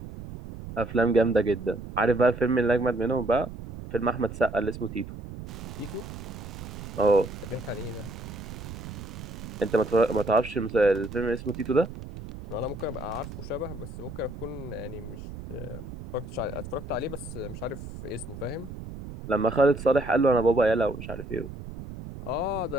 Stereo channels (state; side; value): noise; right; rumble, 11 dB below the sound